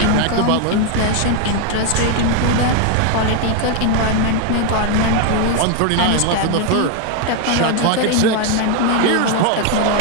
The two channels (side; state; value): both; different; correlation 0.01